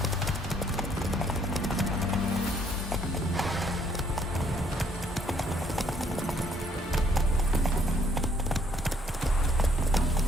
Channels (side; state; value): both; normal; correlation 0.66